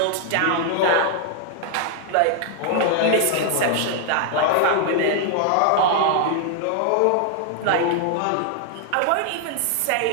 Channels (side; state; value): both; different; correlation 0.00